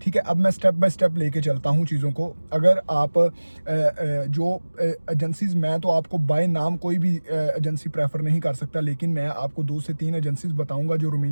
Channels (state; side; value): inverted; both; correlation -1.00